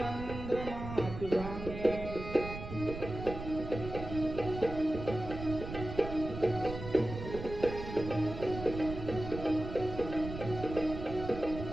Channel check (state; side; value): noise; right; rumble, 8 dB below the sound